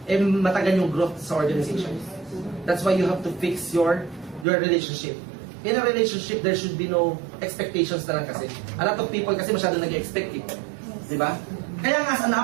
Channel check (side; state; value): left; drops out; at 4.5 s